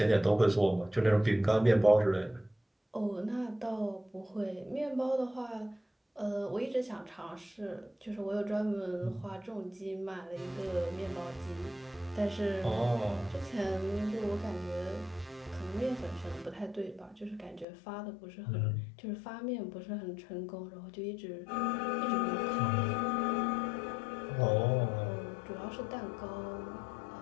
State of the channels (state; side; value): drops out; right; at 17.7 s